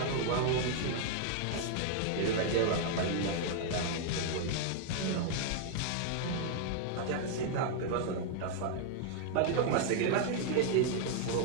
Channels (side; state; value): both; different; correlation 0.00